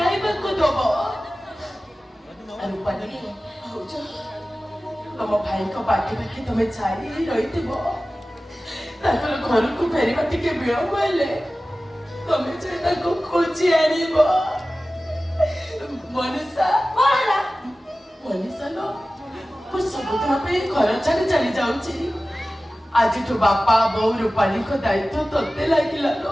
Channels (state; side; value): normal; both; correlation 0.96